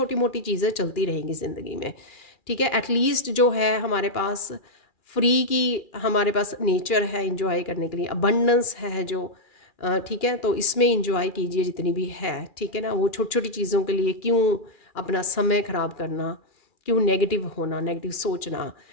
मोटी चीज़ें चलती रहेंगी ज़िंदगी में, ठीक है। एटलीस्ट जो है हमारे पास फ्री की, हमारे पास नेचर है इंजॉय करने के लिए, अबंडेंस है जो, ठीक है। तो इसमें इंजॉय कीजिए जितनी भी है, ठीक है ना। वो छोटी छोटी चीज़ों के लिए क्यों अपना समय ख़राब करना, क्यों नेगेटिव होना, नेगेटिव सोचना।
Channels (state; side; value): late; right; 2.4 ms